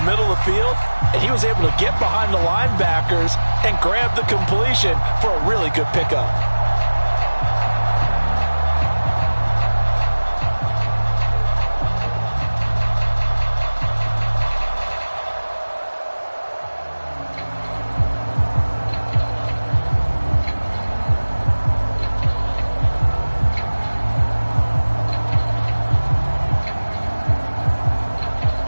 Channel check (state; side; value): inverted; both; correlation -1.00